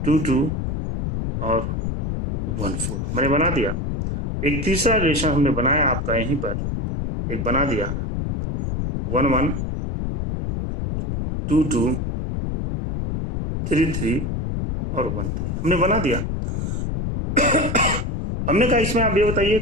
2 2 और 1 4 मैंने बना दिया। एक तीसरा रिलेशन हमने बनाया आपका यहीं पर, एक बना दिया 1 1 2 2 3 3 और 1 3 हमने बना दिया। हमने कहा इसमें आप ये बताइए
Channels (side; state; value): left; noise; rumble, 2 dB below the sound